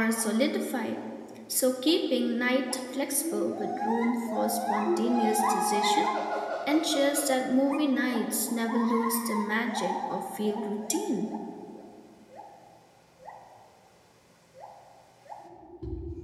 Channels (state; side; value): identical; both; correlation 1.00